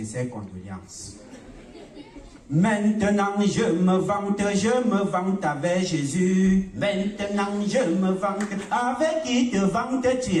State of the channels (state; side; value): identical; both; correlation 1.00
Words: condoléances. Maintenant je me vante avec Jésus. Maintenant je me vante, avec qui te vantes-tu?